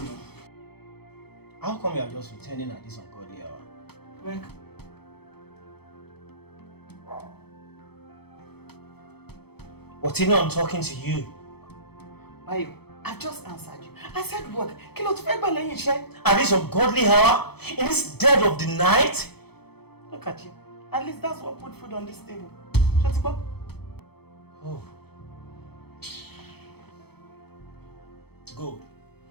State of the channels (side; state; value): right; late; 0.97 ms